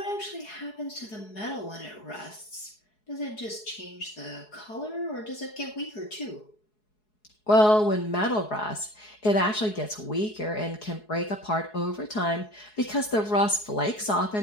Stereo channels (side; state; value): right; late; 4.7 ms